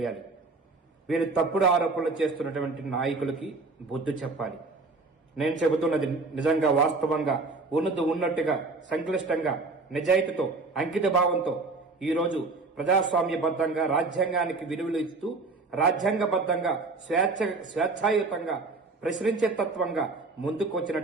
వీరు తప్పుడు ఆరోపణలు చేస్తున్నటువంటి నాయకులకి బుద్ధి చెప్పాలి. నేను చెబుతున్నది నిజంగా వాస్తవంగా ఉన్నట్టుగా సంక్లిష్టంగా నిజాయితీతో అంకిత భావంతో ఈరోజు ప్రజాస్వామ్యబద్ధంగా రాజ్యాంగానికి విలువలు ఇస్తూ రాజ్యాంగబద్ధంగా స్వేచ్ఛాయుతంగా ప్రశ్నించే తత్వంగా ముందుకు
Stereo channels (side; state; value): left; quieter; 3.8 dB